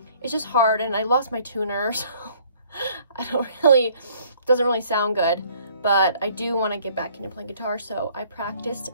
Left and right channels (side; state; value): both; inverted; correlation -0.59